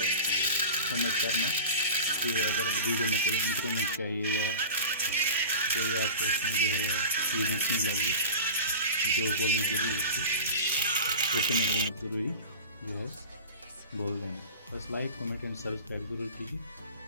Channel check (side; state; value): both; inverted; correlation -0.31